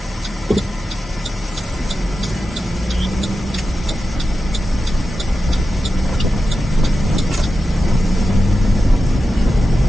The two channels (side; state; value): both; normal; correlation 0.92